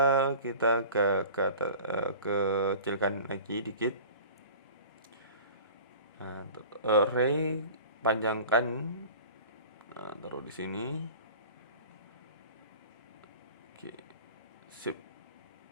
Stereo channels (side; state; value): both; inverted; correlation -0.41